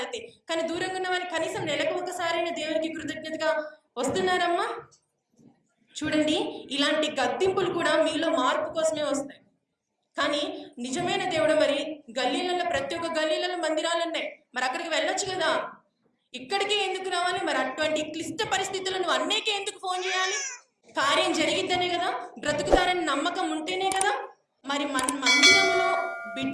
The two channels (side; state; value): both; identical; correlation 1.00